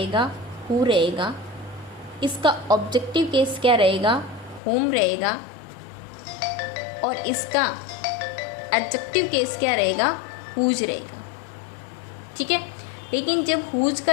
हु रहेगा। इसका ऑब्जेक्टिव केस क्या रहेगा, होम रहेगा। और इसका एडजेक्टिव केस क्या रहेगा, हुज रहेगा। ठीक है। लेकिन जब हुज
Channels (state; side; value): drops out; right; at 4.6 s